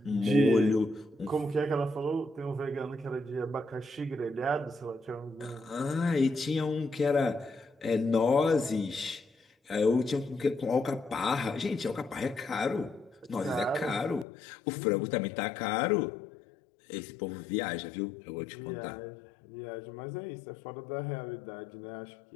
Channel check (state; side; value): drops out; right; at 14.2 s